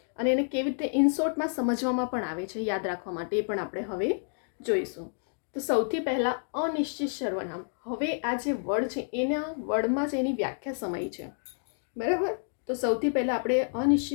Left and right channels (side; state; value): right; silent; digital silence